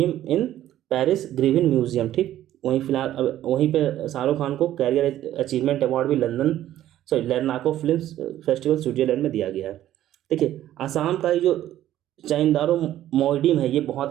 in Paris Grevin museum. ठीक, वहीं पे शाहरुख खान को कैरियर अचीवमेंट अवार्ड भी लर्नाको फिल्म फेस्टिवल स्विट्जरलैंड में दिया गया है। देखिए आसाम का जो चाइंदारो मोइडिम है ये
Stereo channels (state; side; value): quieter; left; 12.8 dB